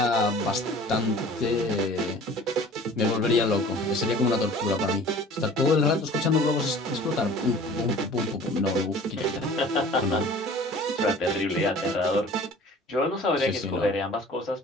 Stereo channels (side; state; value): both; normal; correlation 0.45